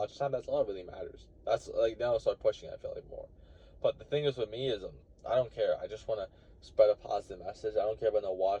time, that's all that really matters. That's like now I start pushing. I feel like more. But the thing is with me is I don't care. I just want to spread a positive message. I don't care about no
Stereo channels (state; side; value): identical; both; correlation 1.00